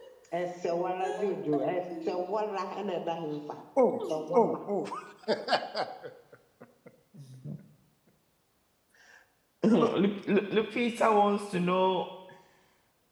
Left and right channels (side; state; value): both; identical; correlation 1.00